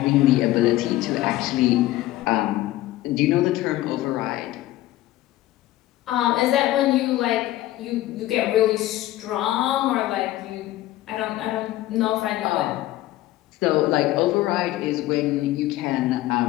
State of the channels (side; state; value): right; quieter; 15.8 dB